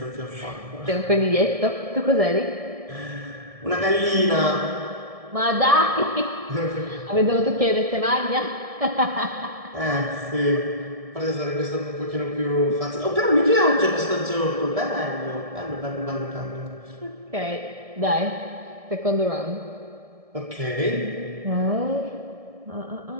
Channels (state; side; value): late; left; 1.7 ms